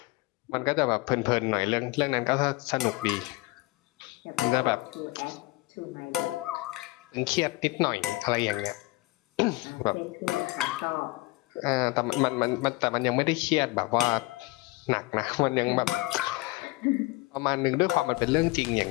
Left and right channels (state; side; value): quieter; right; 22.0 dB